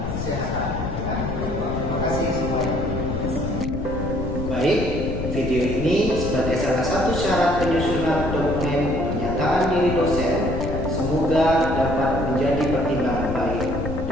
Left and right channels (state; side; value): noise; left; rumble, 4 dB below the sound